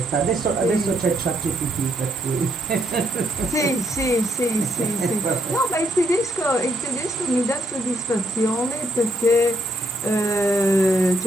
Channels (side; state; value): both; normal; correlation 0.73